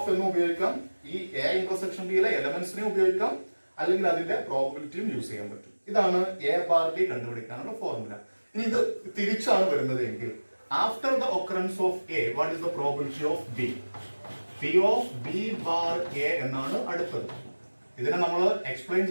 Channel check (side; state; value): both; inverted; correlation -1.00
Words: എന്നും ഉപയോഗിക്കാം. ഈ A intersection B യിലെ എലമെന്റ്സിനെ ഉപയോഗിക്കാം. അല്ലെങ്കിൽ അതിന്റെ പ്രോബബിലിറ്റിയും യൂസ് ചെയ്യാൻ പറ്റും. ഇതാണ് എ ബാർ ബി കണ്ടുപിടിക്കാനുള്ള ഫോർമുല. ഇനി ഇത് തിരിച്ചാണ് വരുന്നത് എങ്കിൽ after the occurrence of A what is the probability of B? P of B bar A എന്നാണ് അടുത്തത്. ഇതിനെ നമ്മൾ എക്സ്പ്ലെയിൻ